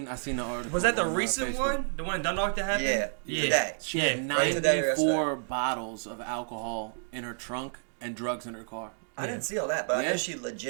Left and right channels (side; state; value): left; silent; digital silence